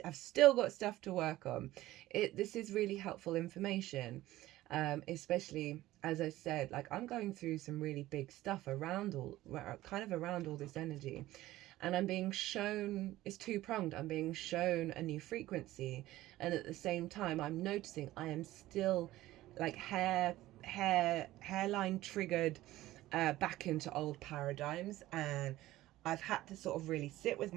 still got stuff to work on, this is really helpful information, especially, as I said, like I'm going through some really big stuff around all this energy. And I'm being shown, it's two-pronged, I'm being shown a new frequency. And at the same time, I'm noticing I am still like hairline triggered back into old paradigms. And I've had to sort of really sit with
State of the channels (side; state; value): left; quieter; 16.1 dB